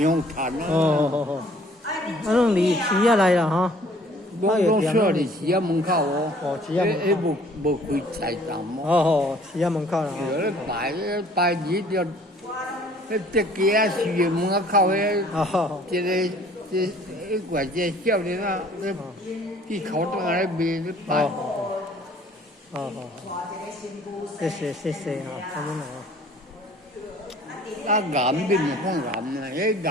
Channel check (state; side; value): normal; both; correlation 0.55